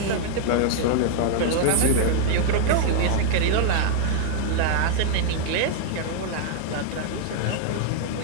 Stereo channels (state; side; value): different; both; correlation -0.01